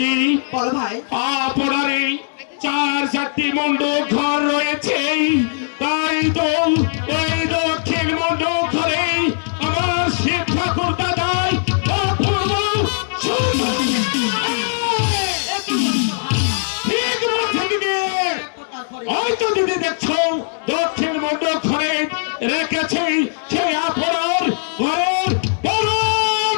বলো ভাই। আপনারে 4-4টি মণ্ডপ ঘর রয়েছে, তাই তো ওই দক্ষিণ মণ্ডপ ঘরে আমার শিব ঠাকুর দাদাই অপূর্ব সুন্দর। ঠিক বলছে দিদি, হয়তো দিদি দেখছো দক্ষিণ মণ্ডপ ঘরে রেখেছে সেই আপনার ঘরের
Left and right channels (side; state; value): right; silent; digital silence